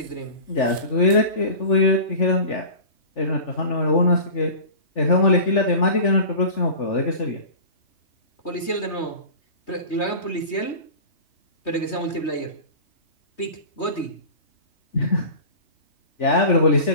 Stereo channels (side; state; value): right; late; 3.2 ms